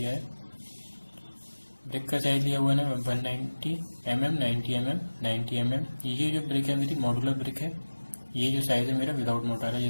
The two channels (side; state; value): both; inverted; correlation -1.00